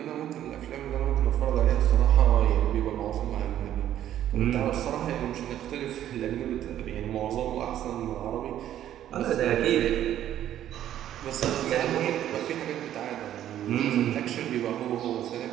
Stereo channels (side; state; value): left; quieter; 11.5 dB